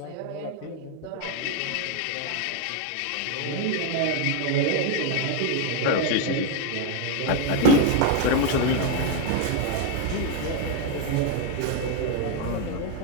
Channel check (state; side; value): different; both; correlation 0.01